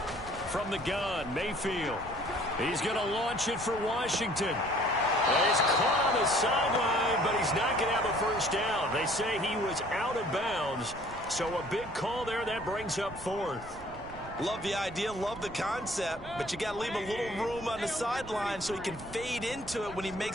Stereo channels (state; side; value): noise; right; rumble, 16 dB below the sound